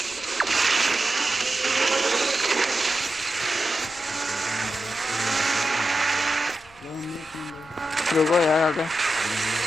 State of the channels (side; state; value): left; noise; rumble, 28 dB below the sound